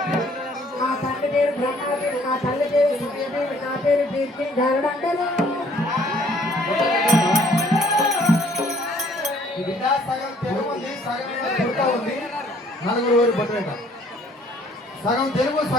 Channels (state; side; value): normal; both; correlation 0.60